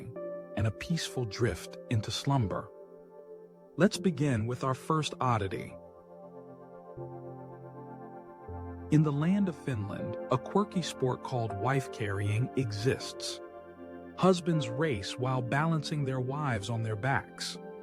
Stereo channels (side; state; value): both; identical; correlation 1.00